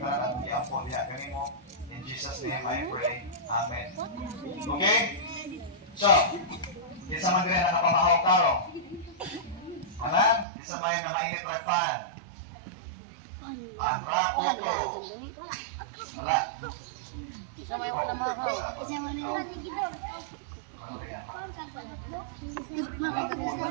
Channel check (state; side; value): drops out; left; at 10.5 s